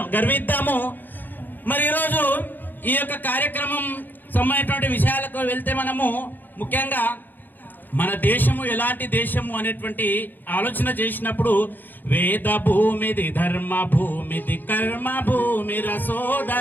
గర్విద్దాము. మరి ఈరోజు ఈ యొక్క కార్యక్రమం సంబంధించినటువంటి విషయాలకు వెళ్తే మనము ముఖ్యంగా మన దేశము ఎలాంటి దేశము అనేటువంటి ఆలోచన చేసినప్పుడు, వేద భూమిది, ధర్మ భూమిది, కర్మ భూమి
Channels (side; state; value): right; late; 0.088 ms